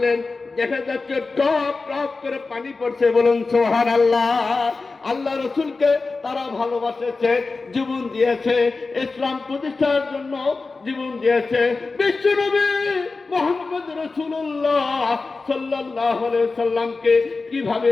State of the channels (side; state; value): right; quieter; 3.9 dB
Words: দেখা যাচ্ছে টপ টপ করে পানি পড়ছে, বলুন সুবহানাল্লাহ। আল্লাহ রসুলকে তারা ভালোবাসেছে, জীবন দিয়েছে, ইসলাম প্রতিষ্ঠার জন্য জীবন দিয়েছে। বিশ্বনবী মুহাম্মদ রাসূলুল্লাহ সাল্লাল্লাহু আলাইহি সাল্লামকে কিভাবে